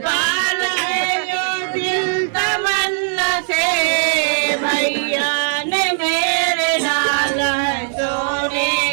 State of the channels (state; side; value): silent; left; 57 dB below the other